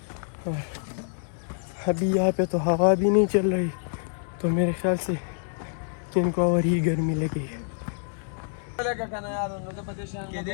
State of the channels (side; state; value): right; silent; digital silence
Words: और अभी यहाँ पे तो हवा भी नहीं चल रही, तो मेरे ख्याल से इनको और ही गर्मी लगी है। Oh,